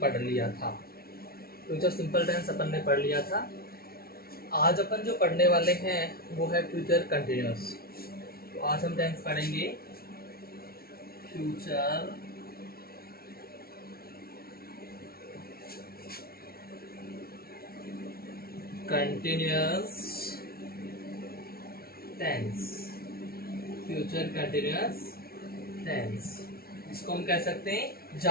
लिया था। फ्यूचर सिंपल टेंस अपन ने पढ़ लिया था। आज अपन जो पढ़ने वाले हैं वो है फ्यूचर कंटिन्यूअस। तो आज हम टेंस पढ़ेंगे future continuous tense. Future continuous tense, इसको हम कह सकते हैं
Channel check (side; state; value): right; late; 0.44 ms